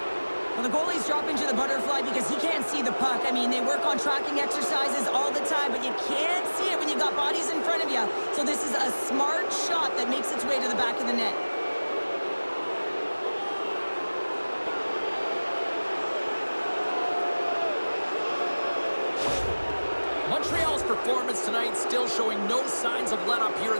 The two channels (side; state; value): both; inverted; correlation -1.00